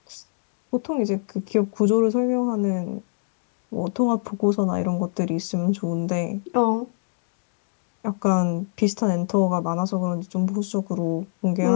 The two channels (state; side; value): silent; right; digital silence